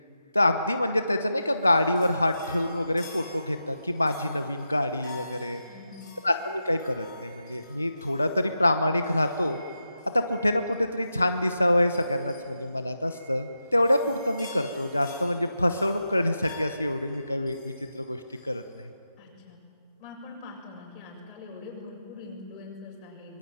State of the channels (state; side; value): inverted; both; correlation -0.88